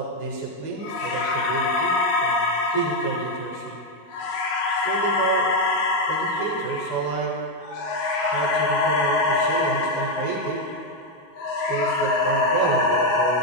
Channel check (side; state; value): right; late; 19 ms